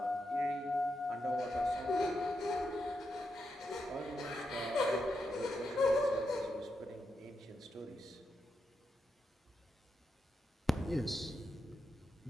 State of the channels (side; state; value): both; normal; correlation 0.85